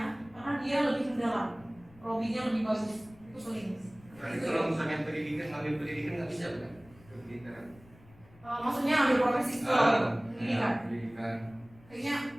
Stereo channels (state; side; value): noise; left; rumble, 24 dB below the sound